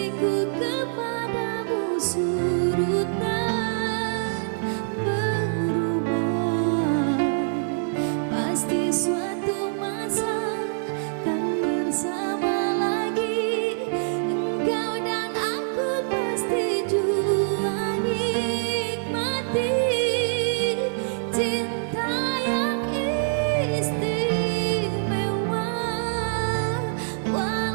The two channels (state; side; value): silent; left; 62 dB below the other